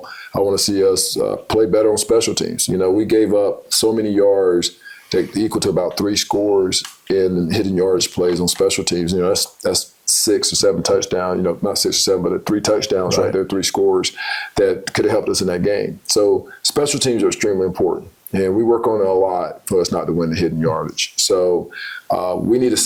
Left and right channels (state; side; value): identical; both; correlation 1.00